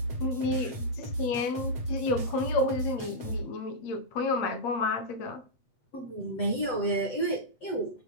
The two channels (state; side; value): late; right; 7.9 ms